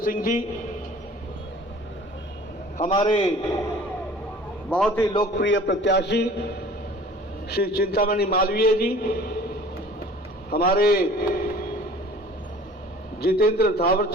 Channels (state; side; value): normal; both; correlation 0.47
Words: जी, हमारे बहुत ही लोकप्रिय प्रत्याशी श्री चिंतामणि मालवीय जी, हमारे जितेंद्र